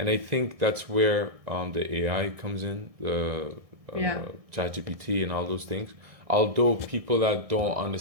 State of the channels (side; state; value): left; late; 1.6 ms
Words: I think that's where the AI comes in, the Yeah. ChatGPT and all those things. Although people that don't